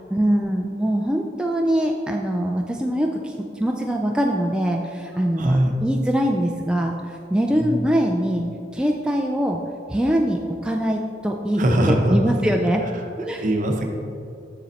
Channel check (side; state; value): both; normal; correlation 0.88